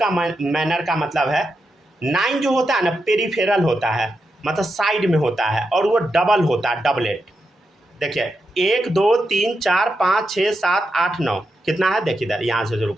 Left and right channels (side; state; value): both; normal; correlation 0.86